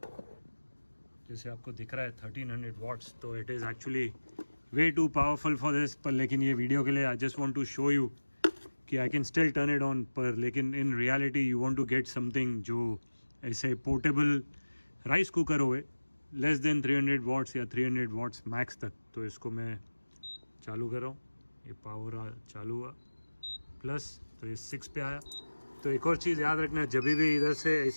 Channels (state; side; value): inverted; both; correlation -1.00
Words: जैसे आपको दिख रहा है 1300 वाट्स। तो it is actually way too powerful for this, पर लेकिन ये वीडियो के लिए I just want to show you कि I can still turn it on, पर लेकिन in reality you want to get something जो ऐसे पोर्टेबल राइस कुकर होए लेस देन 300 वाट्स या 300 वाट्स मैक्स तक। तो इसको मैं चालू कर रहा हूँ, ये पावर चालू हुआ प्लस, तो ये 6 पे आया। तो एक और चीज़ याद रखना, जब भी इधर से